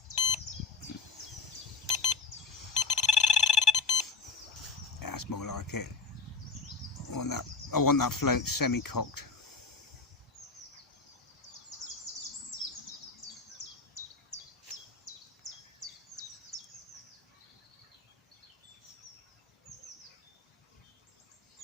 That's more like it. I want that float semi-cocked.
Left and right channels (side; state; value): right; quieter; 4.3 dB